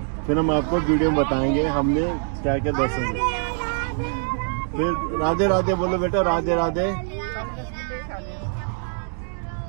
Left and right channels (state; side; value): silent; left; 63 dB below the other